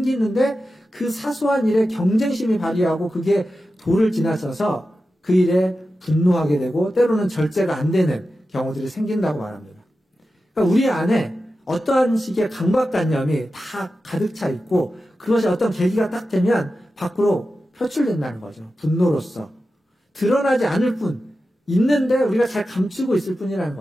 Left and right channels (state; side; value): normal; both; correlation 0.92